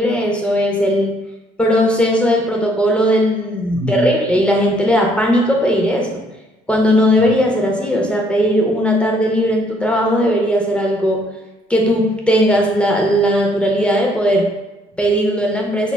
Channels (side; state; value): both; normal; correlation 0.66